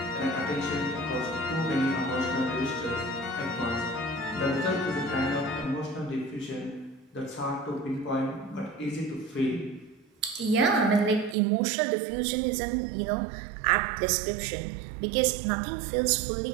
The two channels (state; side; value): drops out; left; at 11.4 s